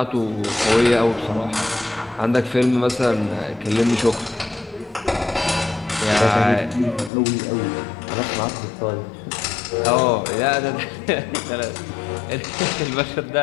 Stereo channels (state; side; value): drops out; right; at 7.1 s